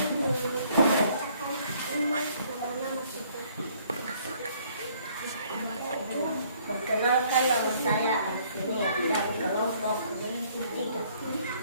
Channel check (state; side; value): inverted; both; correlation -0.62